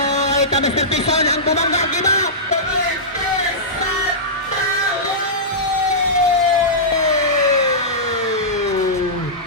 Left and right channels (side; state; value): both; normal; correlation -0.16